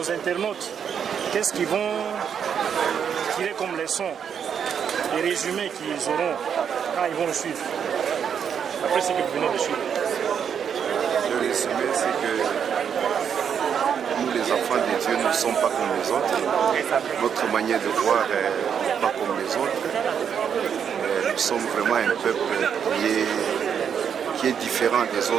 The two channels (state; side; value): quieter; left; 7.7 dB